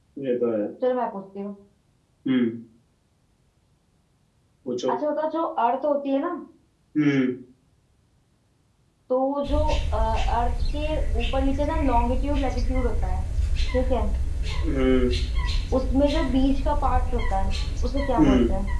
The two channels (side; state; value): both; identical; correlation 1.00